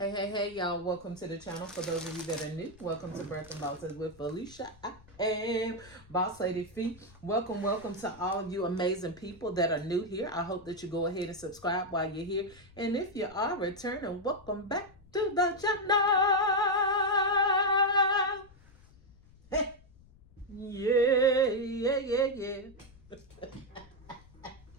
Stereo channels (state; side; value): noise; left; rumble, 25 dB below the sound